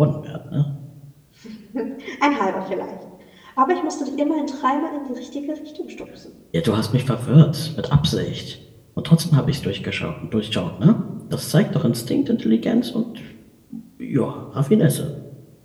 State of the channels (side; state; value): both; identical; correlation 1.00